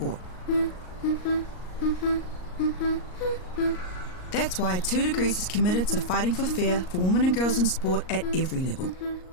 That's why 2 Degrees is committed to fighting for fair for women and girls in sport at every level.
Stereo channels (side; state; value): right; late; 38 ms